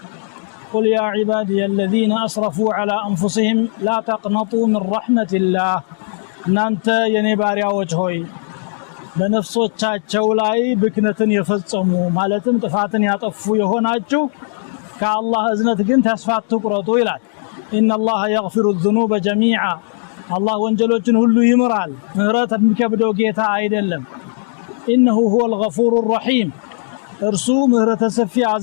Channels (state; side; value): silent; right; digital silence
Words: قل يا عبادي الذين أسرفوا على أنفسهم لا تقنطوا من رحمة الله. نانت ينباريا وجهوي በነፍሶቻቸው ላይ ብክነትን የፈጸሙ ማለትም ጥፋትን ያጠፉ የሆናችሁ ከአላህ እዝነት ግን ተስፋ አትቁረጡ ይላል። ኢነላህ የግፊሩ الذنوب جميعا አላህ ወንጀሎችን ሁሉ ይምራል። ምህረት የሚከብደው ጌታ አይደለም። ኢነሁ هو الغفور الرحيم እርሱ ምህረተ ሰፊ